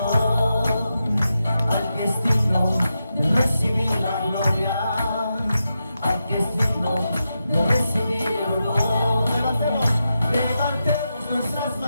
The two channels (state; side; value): inverted; both; correlation -0.88